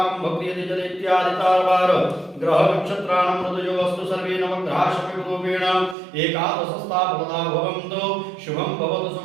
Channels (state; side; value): drops out; left; at 6.0 s